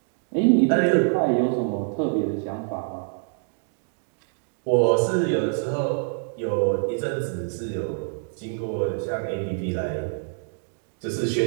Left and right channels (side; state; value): left; silent; digital silence